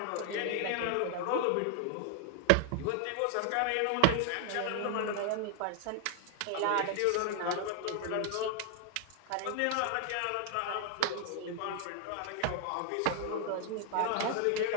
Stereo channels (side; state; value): both; different; correlation 0.00